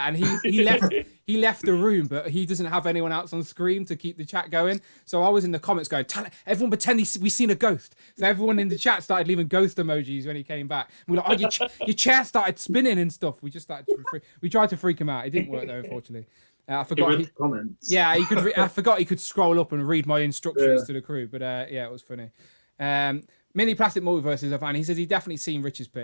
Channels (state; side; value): inverted; both; correlation -1.00